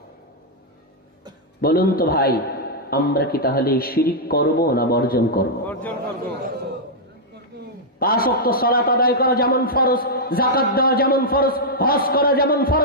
বলুন তো ভাই, আমরা কি তাহলে শিরিক করব না বর্জন করব? 5 ওয়াক্ত সালাত আদায় করা যেমন ফরজ, যাকাত দেওয়া যেমন ফরজ, হজ করা যেমন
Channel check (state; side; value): normal; both; correlation -0.05